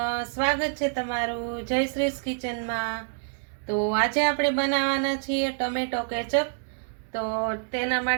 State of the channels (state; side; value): silent; left; digital silence